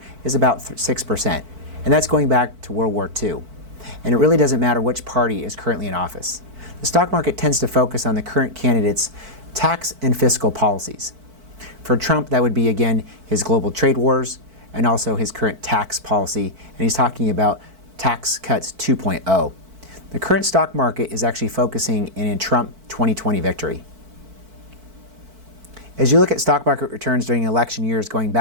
is about 6%, and that's going back to World War II. And it really doesn't matter which party is currently in office. The stock market tends to focus on the current candidate's tax and fiscal policies. For Trump, that would be, again, his global trade wars and also his current tax policy, and he's talking about tax cuts 2.0. The current stock market is actually focusing in Trump 2020 victory. As you look at stock market returns during election years going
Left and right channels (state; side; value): late; left; 4.5 ms